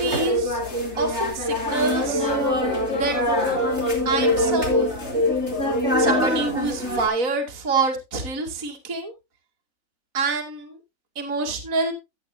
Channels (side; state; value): left; late; 3.9 ms